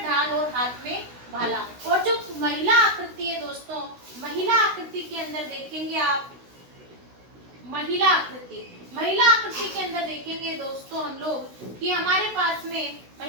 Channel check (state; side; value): late; left; 16 ms